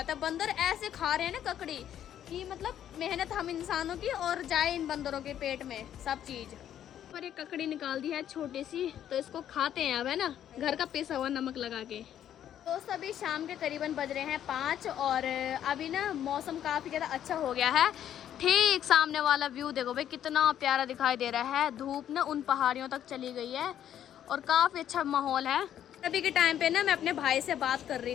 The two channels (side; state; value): right; quieter; 10.5 dB